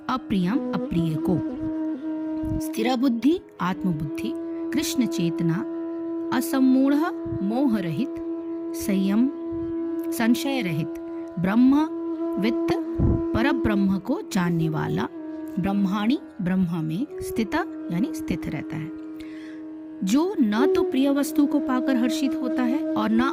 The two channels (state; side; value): identical; both; correlation 1.00